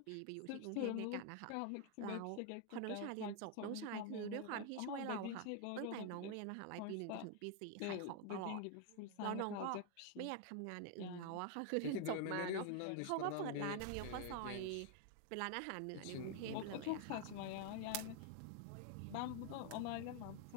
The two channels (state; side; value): different; both; correlation 0.00